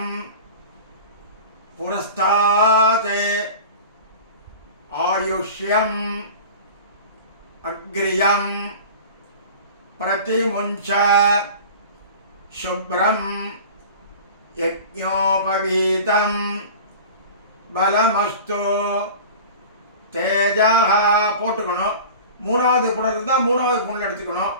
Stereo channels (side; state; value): both; inverted; correlation -0.38